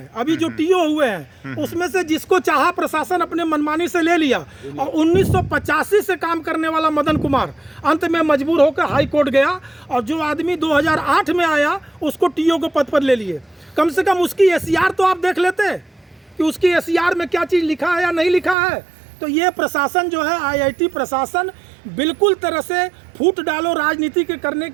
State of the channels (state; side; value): drops out; left; at 18.6 s